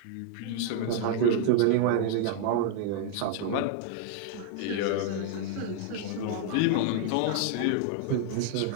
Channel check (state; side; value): different; both; correlation 0.00